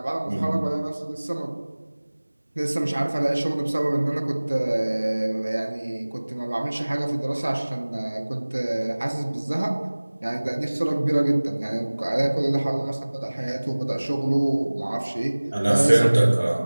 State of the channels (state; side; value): inverted; both; correlation -1.00